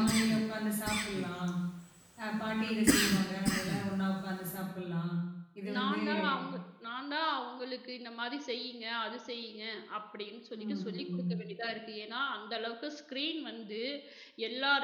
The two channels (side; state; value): both; identical; correlation 1.00